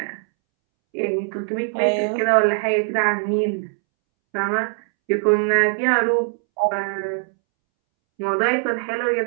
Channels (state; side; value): silent; left; 65 dB below the other